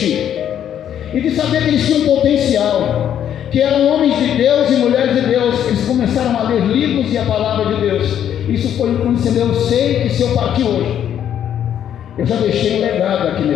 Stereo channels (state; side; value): quieter; right; 9.9 dB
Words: e de saber que eles tinham potencial, que eram homens de Deus e mulheres de Deus, eles começaram a ler livros e a palavra de Deus. Isso foi influenciando. Eu sei que se eu partir hoje, eu já deixei um legado aqui